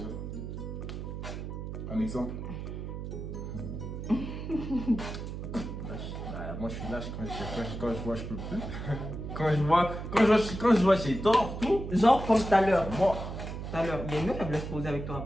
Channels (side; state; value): right; noise; hum, 7 dB below the sound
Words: un exemple. Lâche. Bah, moi je suis lâche quand je vois je peux plus. quand je vois j'ai tort, tout. Genre comme tout à l'heure. Moi. Tout à l'heure, il y a une meuf elle voulait se poser avec